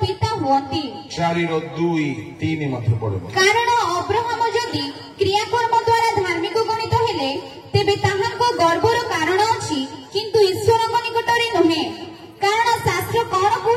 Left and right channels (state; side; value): identical; both; correlation 1.00